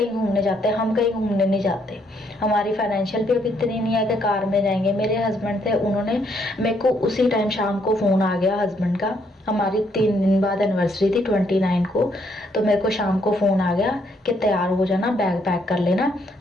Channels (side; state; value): both; normal; correlation 0.72